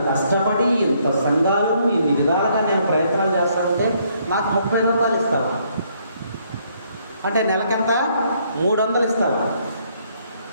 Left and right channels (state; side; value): inverted; both; correlation -0.69